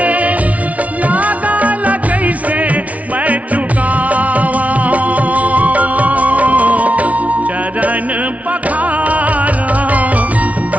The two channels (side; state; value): left; late; 0.068 ms